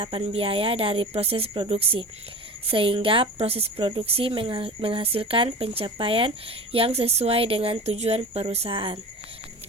biaya dari proses produksi, sehingga proses produksi menghasilkan pencapaian yang sesuai dengan tujuan perusahaan.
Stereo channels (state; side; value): normal; both; correlation 0.34